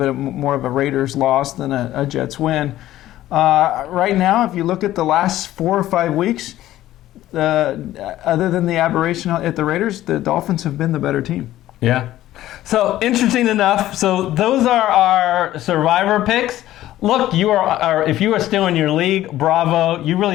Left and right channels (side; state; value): right; quieter; 14.2 dB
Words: more of a Raiders loss than a Jets win. Right now, if you look at the last 4 or 5 weeks, other than the aberration at the Raiders, the Dolphins have been the better team. Yeah. So interesting enough. So those are our survivor picks. Look, if you are still in your league, bravo. You